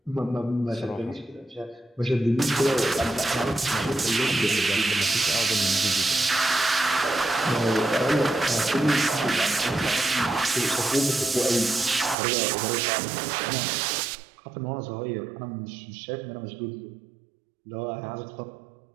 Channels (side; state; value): left; drops out; at 12.2 s